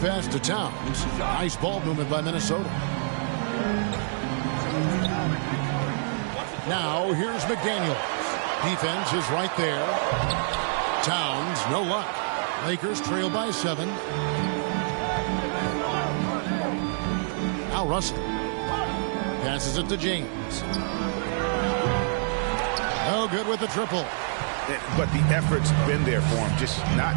to Towns. Nice ball movement by Minnesota. Now here's McDaniel. Defense is right there. Towns, no luck. Lakers trail by 7. Now Russell. Passes it to James. No good with the triple. But the effort's been there for him, just not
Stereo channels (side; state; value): left; silent; digital silence